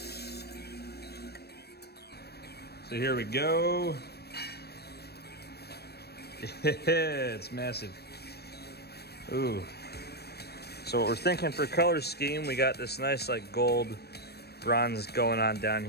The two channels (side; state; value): right; late; 0.47 ms